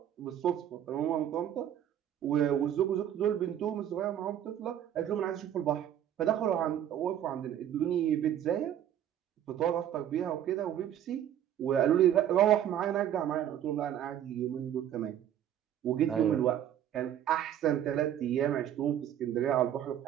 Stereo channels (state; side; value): quieter; left; 10.6 dB